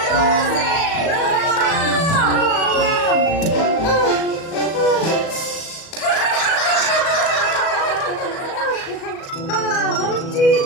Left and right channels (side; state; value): right; late; 37 ms